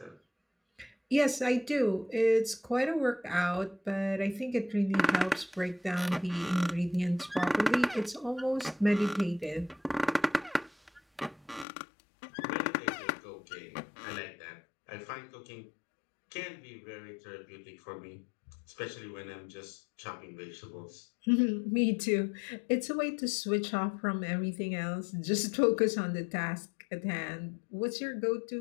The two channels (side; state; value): right; drops out; at 11.7 s